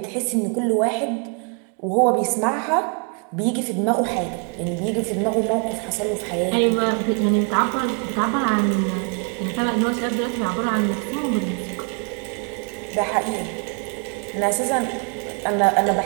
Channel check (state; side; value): quieter; left; 38.6 dB